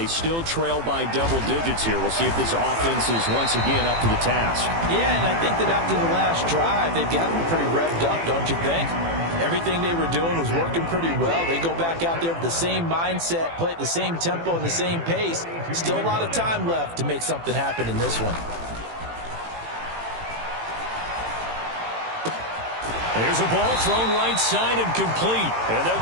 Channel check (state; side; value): late; left; 18 ms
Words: still trail by double digits here. We'll see if this offense is once again up to the task. Yeah, and I think that after the last drive, they've gotten pretty revved up, don't you think? Everything they were doing was working pretty well. They go back out there with the same mindset, play at the same tempo and the same pace. Still a lot of time left to make something happen in this one. Here's a ball thrown right side and complete. And they'll